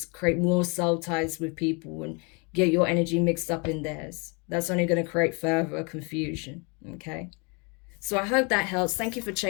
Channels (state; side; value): quieter; right; 32.2 dB